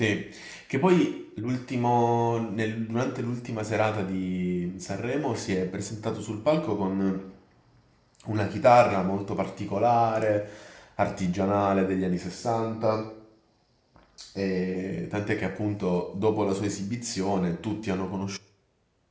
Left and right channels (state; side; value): identical; both; correlation 1.00